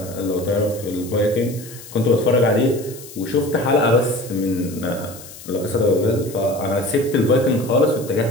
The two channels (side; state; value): left; noise; hiss, 17 dB below the sound